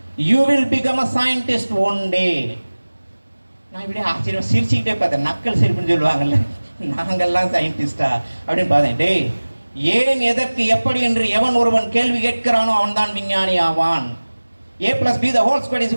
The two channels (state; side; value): inverted; both; correlation -1.00